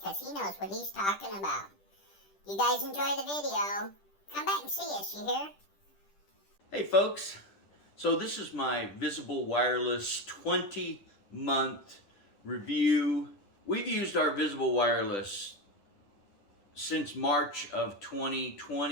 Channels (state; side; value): late; right; 10 ms